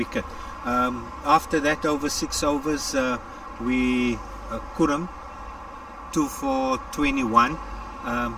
After that, over 6 overs, we Kurum 2 for 21,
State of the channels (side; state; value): both; identical; correlation 1.00